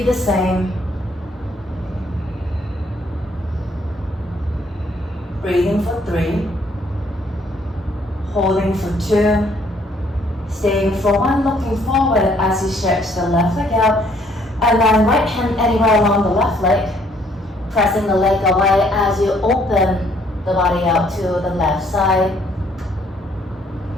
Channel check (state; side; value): normal; both; correlation 0.65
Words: the same. Breathing for 3. Holding for 2. Staying for 1, looking forward as you stretch the left leg out. And then right hand anywhere along the left leg. Pressing the leg away as you open the body out to the left side.